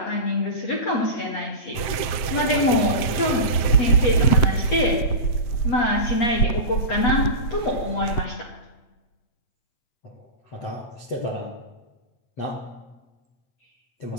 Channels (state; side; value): late; right; 7.7 ms